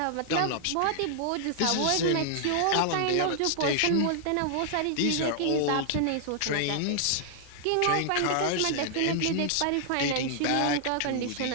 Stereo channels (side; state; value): both; different; correlation -0.01